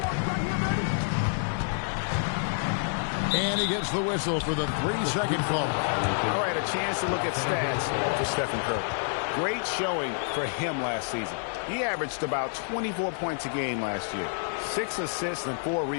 And he gets the whistle for the 3-second call. All right, a chance to look at stats for Stephen Curry. Great showing for him last season. He averaged about 24 points a game last year, 6 assists and 4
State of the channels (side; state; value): right; silent; digital silence